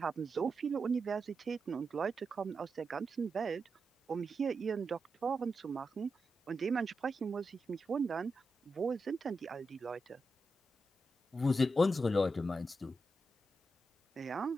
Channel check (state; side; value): normal; both; correlation 0.88